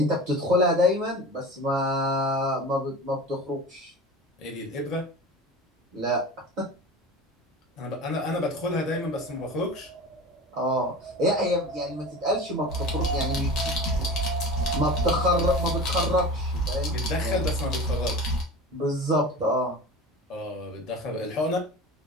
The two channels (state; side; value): normal; both; correlation 0.34